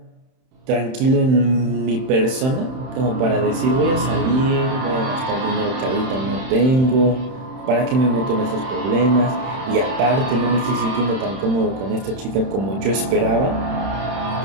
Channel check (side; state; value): left; late; 31 ms